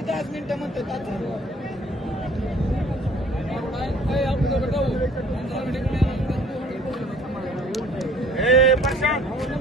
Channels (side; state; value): both; normal; correlation 0.54